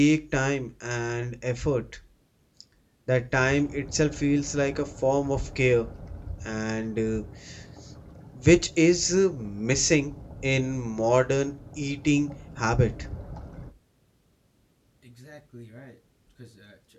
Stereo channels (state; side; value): identical; both; correlation 1.00